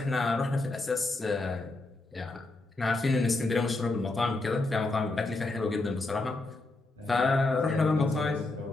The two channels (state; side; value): quieter; right; 3.1 dB